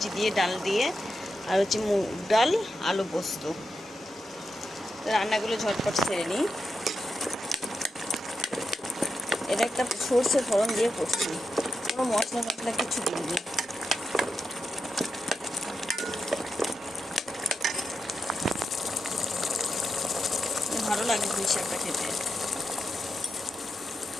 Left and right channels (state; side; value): normal; both; correlation 0.87